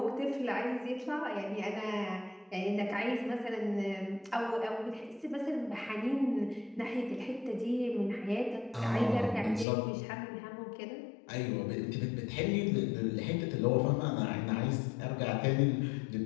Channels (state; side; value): drops out; right; at 9.7 s